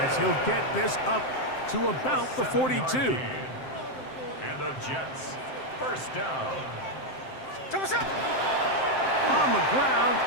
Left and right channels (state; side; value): late; right; 7.6 ms